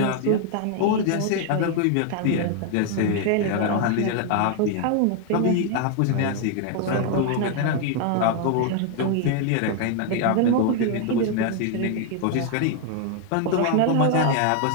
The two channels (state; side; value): different; both; correlation 0.00